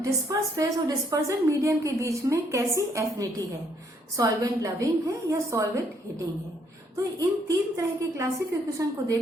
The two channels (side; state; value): both; normal; correlation 0.70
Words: डिस्पर्स फेज और डिस्पर्जन मीडियम के बीच में कैसी एफिनिटी है, सॉल्वेंट लविंग है या सॉल्वेंट हिटिंग है। तो इन तीन तरह के क्लासिफिकेशन को